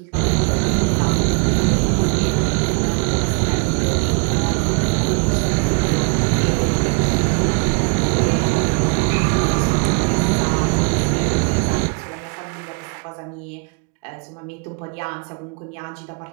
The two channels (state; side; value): quieter; left; 38.5 dB